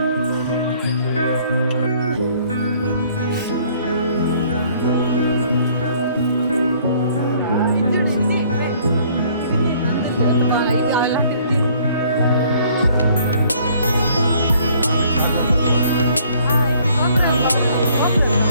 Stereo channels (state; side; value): inverted; both; correlation -0.60